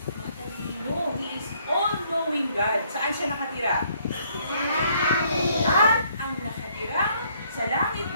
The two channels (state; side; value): inverted; both; correlation -0.67